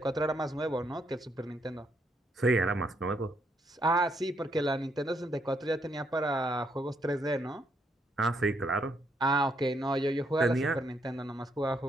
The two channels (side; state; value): both; normal; correlation 0.74